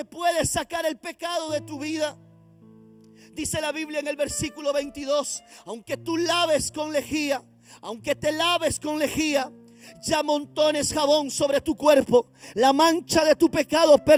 puede sacar el pecado de tu vida. Dice la Biblia en el versículo 22: aunque tú laves con lejía, aunque te laves con lejía, ya amontones jabón sobre tu cuerpo, la mancha de tu pecado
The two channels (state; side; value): identical; both; correlation 1.00